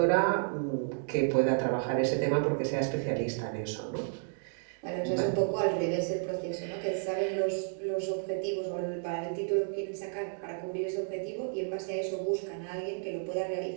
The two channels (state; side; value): silent; left; digital silence